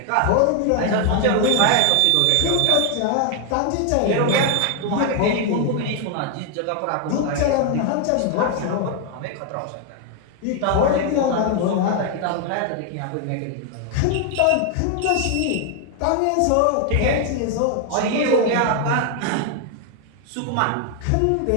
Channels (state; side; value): different; both; correlation 0.00